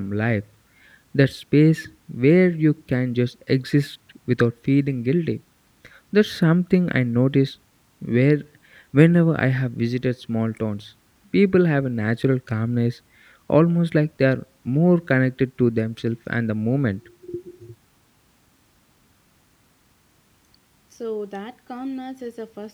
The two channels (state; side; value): identical; both; correlation 1.00